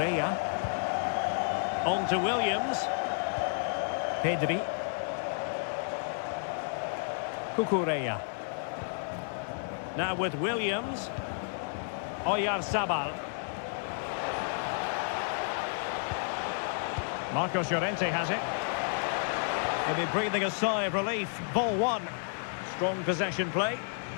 On to Williams. Pedri. Cucurella. Now with Williams. Oyarzabal. Marcos Llorente has it. He'll be breathing a sigh of relief. Ball one. Strong possession play.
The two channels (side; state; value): right; silent; digital silence